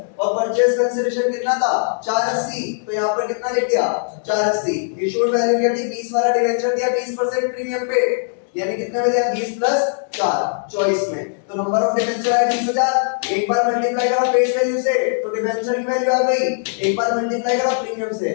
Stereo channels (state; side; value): silent; right; digital silence